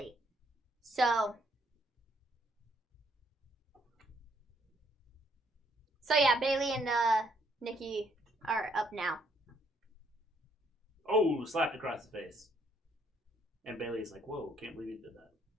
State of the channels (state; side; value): normal; both; correlation 0.69